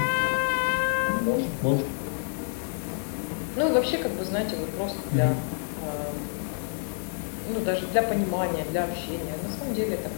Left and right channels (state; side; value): silent; right; digital silence